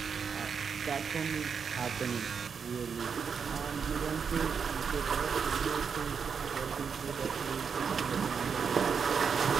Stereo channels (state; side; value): quieter; left; 6.3 dB